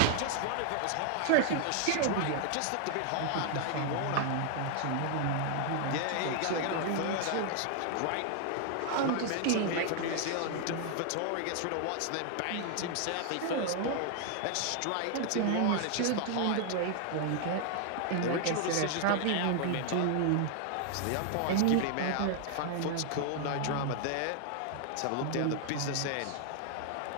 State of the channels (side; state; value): both; different; correlation 0.00